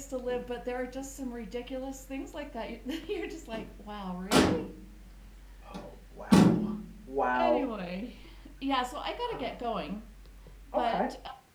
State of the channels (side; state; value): both; identical; correlation 1.00